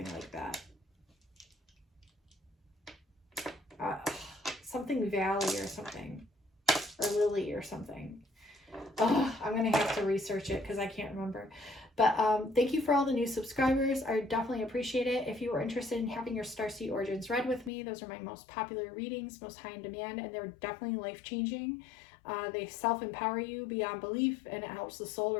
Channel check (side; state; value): right; drops out; at 17.7 s